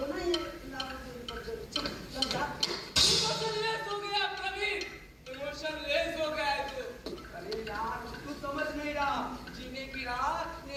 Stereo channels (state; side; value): identical; both; correlation 1.00